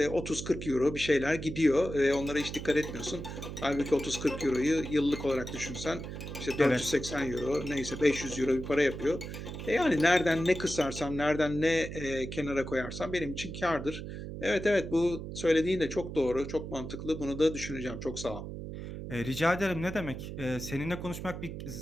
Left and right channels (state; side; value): noise; right; hum, 8 dB below the sound